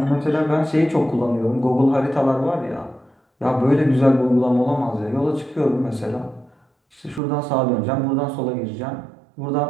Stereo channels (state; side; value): drops out; left; at 7.2 s